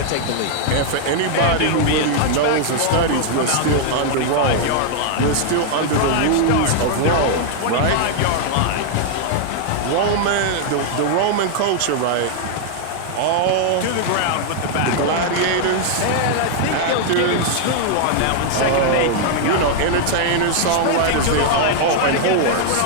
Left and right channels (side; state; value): both; different; correlation 0.00